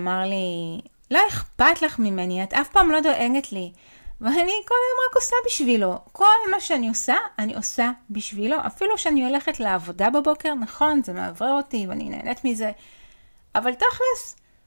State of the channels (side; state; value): both; inverted; correlation -1.00